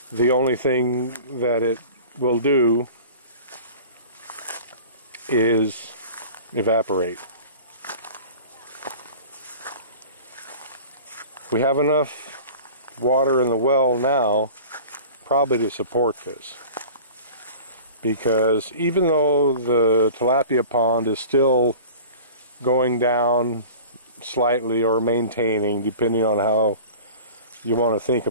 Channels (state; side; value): inverted; both; correlation -0.40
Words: The only thing that it will do is evaporate. We have enough water in the well now probably to support this, because even though the tilapia pond is still going down slightly or maintaining, depending on how you want to think